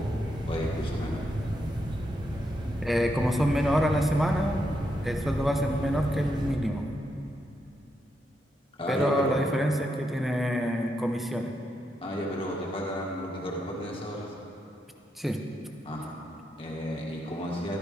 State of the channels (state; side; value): normal; both; correlation 0.82